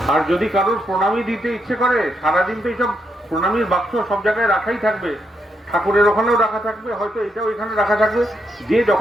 আর যদি কারোর প্রণামী দিতে ইচ্ছে করে, সারাদিন তো এইসব প্রণামীর বাক্স সব জায়গায় রাখাই থাকবে, ঠাকুরের ওখানেও রাখা থাকবে, হয়তো এটাও এখানে রাখা থাকবে। যে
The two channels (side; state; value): both; normal; correlation 0.80